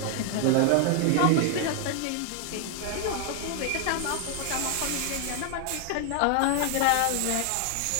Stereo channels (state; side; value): different; both; correlation 0.00